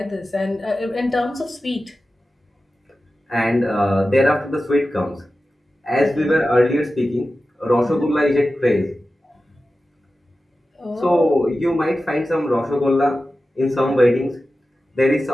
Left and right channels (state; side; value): normal; both; correlation 0.94